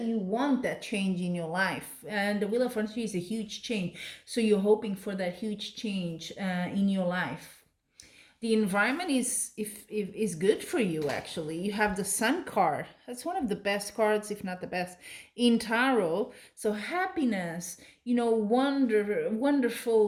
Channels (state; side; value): identical; both; correlation 1.00